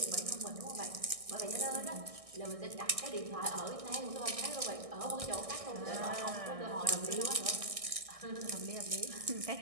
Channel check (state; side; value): late; left; 1.6 ms